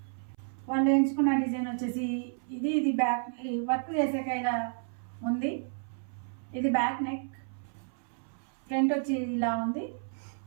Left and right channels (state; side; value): silent; left; 57 dB below the other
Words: వాళ్ళు ఎంచుకున్న డిజైన్ వచ్చేసి ఇది బ్యాక్ వర్క్ చేసాక ఇలా ఉంది. ఇది బ్యాక్ నెక్, ఫ్రంట్ వచ్చి ఇలా ఉంది.